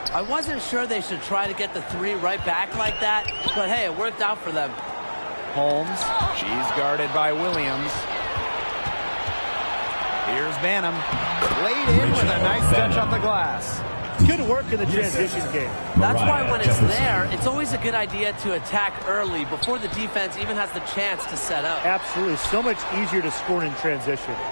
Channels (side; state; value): both; inverted; correlation -1.00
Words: I wasn't sure they should try to get the 3 right back like that, but hey, it worked out for them. Holmes, she's guarded by Williams. Here's Banham. Laid in with a nice touch off the glass. Good work in the transition game. That's why when it's there, it's always a good idea to attack early before the defense even has the chance to set up. Absolutely. So much easier to score in transition.